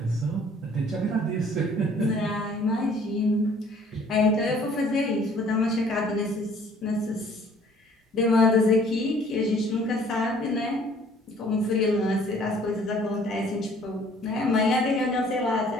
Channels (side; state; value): both; normal; correlation 0.56